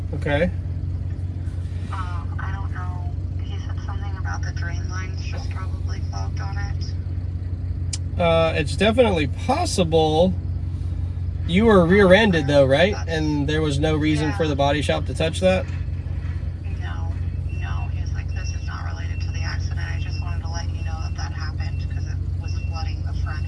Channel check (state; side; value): identical; both; correlation 1.00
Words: Okay. I don't know. He said something about the drain lines just probably clogged on it. It's definitely possible. You were rear-ended though, right? And there was no reason for the body shop to touch that? No. He's like, this is not related to the accident. I just wanted to let you know that that happened because it was flooding the